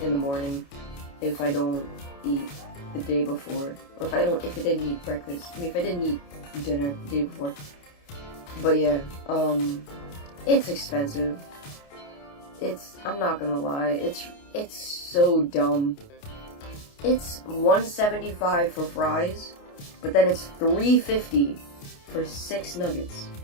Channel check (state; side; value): late; right; 29 ms